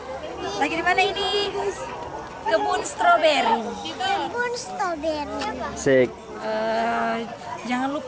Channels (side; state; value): both; identical; correlation 1.00